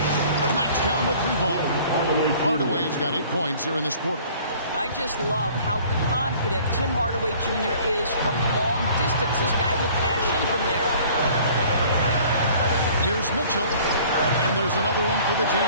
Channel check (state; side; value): inverted; both; correlation -0.52